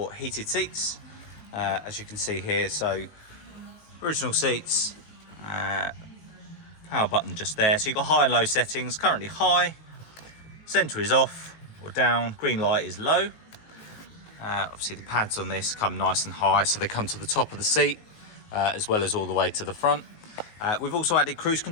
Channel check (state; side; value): late; right; 19 ms